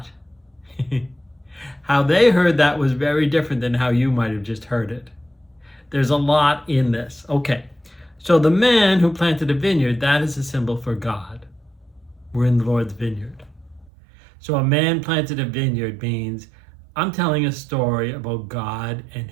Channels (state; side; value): drops out; left; at 13.9 s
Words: how they heard that was very different than how you might have just heard it. There's a lot in this. Okay, so the man who planted a vineyard, that is a symbol for God. We're in the Lord's vineyard. So a man planted a vineyard means I'm telling a story about God and